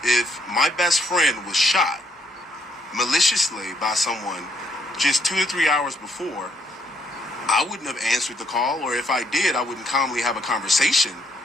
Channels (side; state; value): both; normal; correlation 0.73